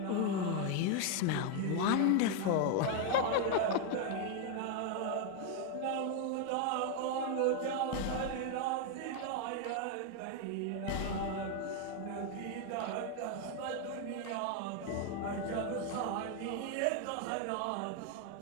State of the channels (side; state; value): both; different; correlation 0.01